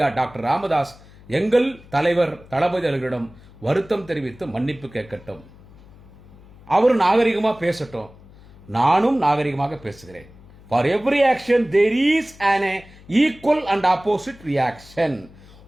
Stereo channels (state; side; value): noise; left; hum, 23 dB below the sound